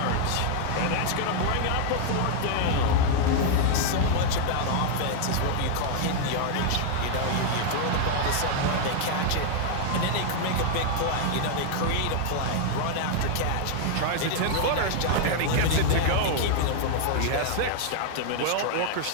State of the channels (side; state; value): both; different; correlation 0.00